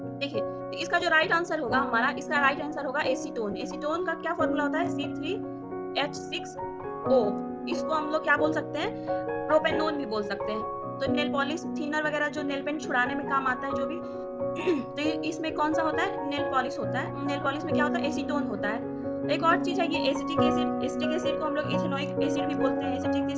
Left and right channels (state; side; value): identical; both; correlation 1.00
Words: देखिए तो इसका जो राइट आंसर होगा हमारा, इसका राइट आंसर होगा एसीटोन। एसीटोन का क्या फॉर्मूला होता है? C3H6O। इसको हम लोग क्या बोल सकते हैं? प्रोपेनोन भी बोल सकते हैं। तो नेल पॉलिश थिनर वगैरह जो नेल पेंट छुड़ाने में काम आता है जो भी, तो इसमें कौन सा होता है? नेल पॉलिश होता है। नेल पॉलिश में क्या होता है? एसीटोन होता है। एक और चीज है ये एसिटिक एसिड। एसिटिक एसिड को हम लोग इथेनोइक एसिड भी बोलते हैं। एसिटिक